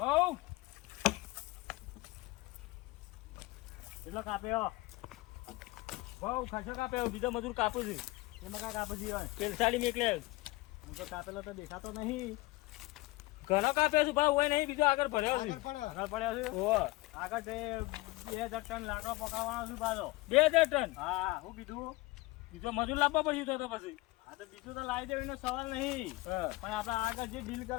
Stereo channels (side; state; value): right; quieter; 21.0 dB